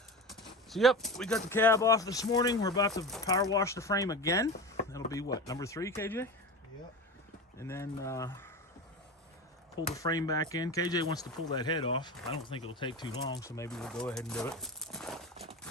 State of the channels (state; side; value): normal; both; correlation 0.27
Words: So yep, we got the cab off this morning. We're about to power wash the frame again. That'll be what, number 3, KJ? Yep. And then pull the frame back in. KJ wants to pull that head off. I don't think it'll take too long, so maybe we'll go ahead and do it.